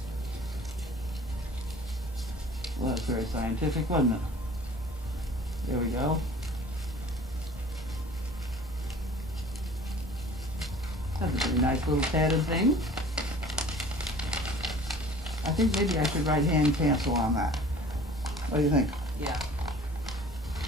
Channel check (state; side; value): normal; both; correlation 0.47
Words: very scientific, wasn't it? There we go. That's a pretty nice little padded thing. I think maybe I should write hand cancel on that. What do you think? Yeah.